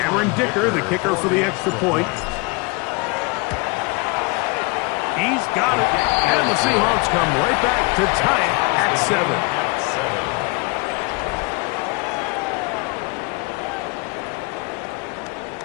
Dicker, the kicker for the extra point. He's got it, and the Seahawks come right back to tie it at 7.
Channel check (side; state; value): right; quieter; 28.6 dB